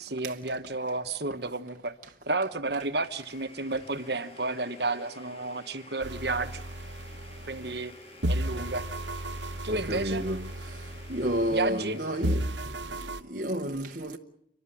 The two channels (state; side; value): normal; both; correlation 0.12